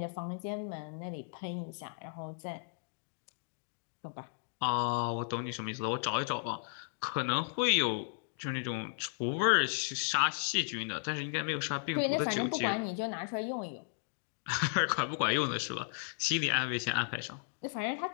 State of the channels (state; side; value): silent; right; digital silence